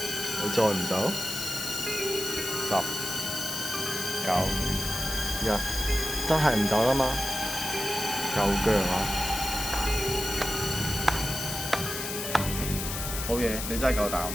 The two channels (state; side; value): noise; left; hiss, 5 dB below the sound